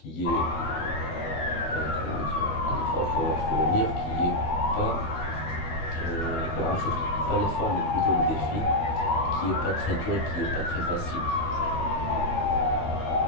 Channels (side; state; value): right; late; 12 ms